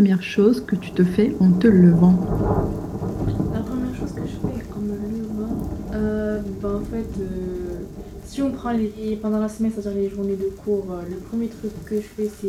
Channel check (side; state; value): both; identical; correlation 1.00